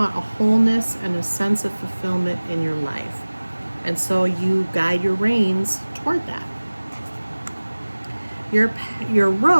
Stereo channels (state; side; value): inverted; both; correlation -1.00